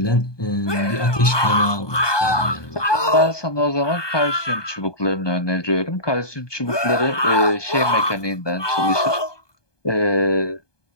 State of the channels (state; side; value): late; right; 1.2 ms